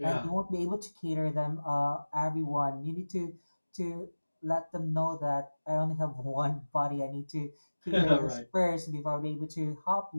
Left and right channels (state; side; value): inverted; both; correlation -1.00